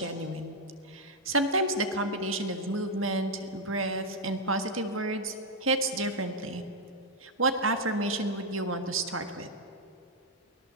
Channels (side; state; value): both; normal; correlation 0.00